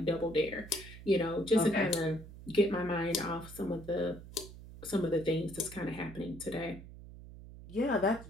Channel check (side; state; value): right; noise; hum, 15 dB below the sound